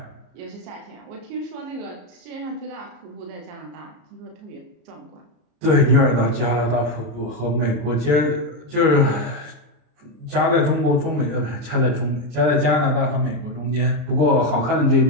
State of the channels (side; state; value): left; late; 34 ms